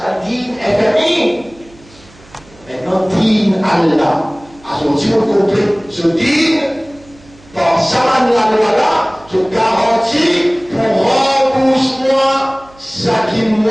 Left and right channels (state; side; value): noise; right; hum, 26 dB below the sound